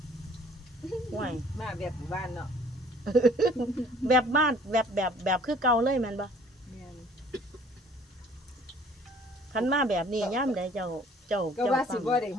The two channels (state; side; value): normal; both; correlation 0.54